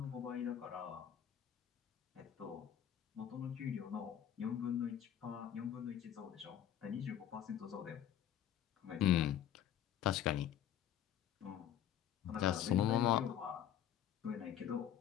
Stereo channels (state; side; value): quieter; right; 10.2 dB